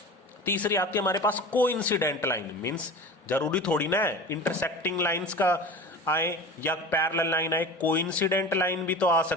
तीसरी आती है हमारे पास कोइंसिडेंट लाइन, मींस जरूरी थोड़ी ना है इंटरसेक्टिंग लाइंस का आए या पैरेलल लाइन आए, कोइंसिडेंट लाइन भी तो आ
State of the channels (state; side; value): normal; both; correlation 0.34